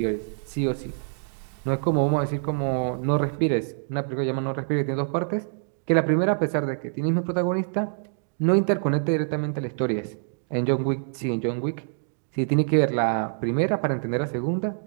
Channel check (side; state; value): left; silent; digital silence